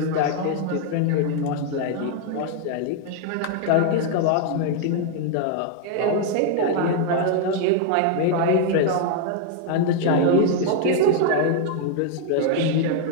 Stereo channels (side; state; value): both; different; correlation 0.00